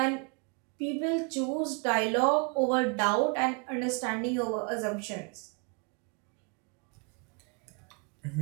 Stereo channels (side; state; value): left; quieter; 36.3 dB